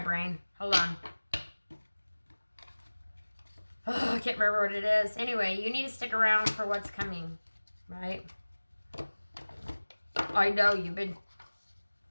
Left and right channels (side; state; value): both; inverted; correlation -1.00